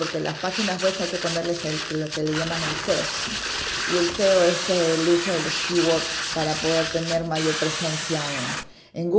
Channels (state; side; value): identical; both; correlation 1.00